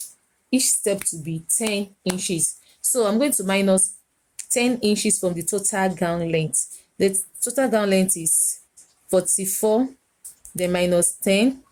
to be 10 inches. So I'm going to minus 10 inches from the total gown length. The total gown length is 44, then minus 10.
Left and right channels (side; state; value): both; identical; correlation 1.00